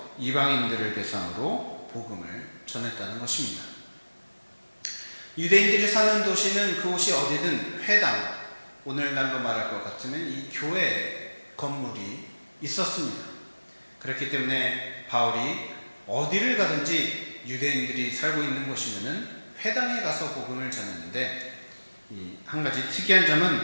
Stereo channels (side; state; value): both; inverted; correlation -1.00